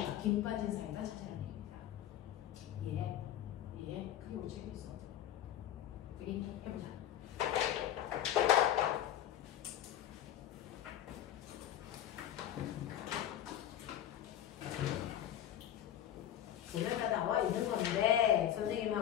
김 빠진 사이다 찾아라는 얘기입니다. 그게 우리 책에 있어. 되겠니? 해보자. 보면 다 나와 있는 건데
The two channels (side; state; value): right; quieter; 11.2 dB